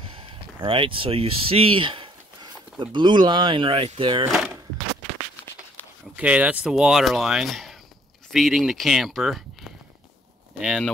All right, so you see the blue line right there. Okay, that's the water line feeding the camper, and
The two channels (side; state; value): both; normal; correlation 0.63